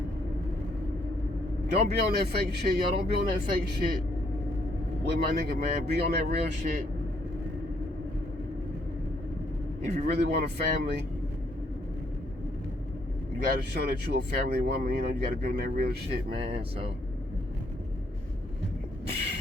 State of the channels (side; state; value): both; normal; correlation 0.70